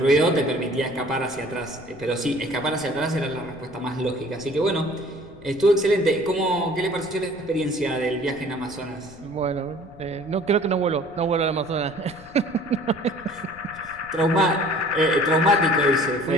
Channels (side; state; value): left; noise; rumble, 22 dB below the sound